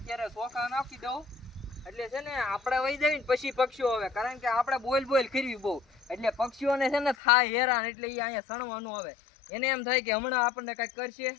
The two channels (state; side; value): drops out; right; at 7.2 s